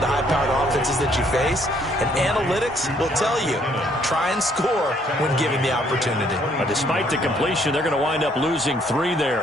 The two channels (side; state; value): both; normal; correlation 0.66